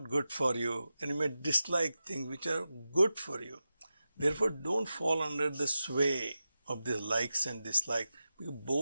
good for you, and you may dislike things which are good for you. Therefore, don't fall under the sway of these likes and dislikes, because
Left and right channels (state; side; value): inverted; both; correlation -0.92